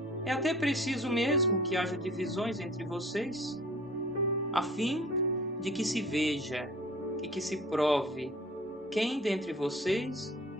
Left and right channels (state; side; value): normal; both; correlation 0.46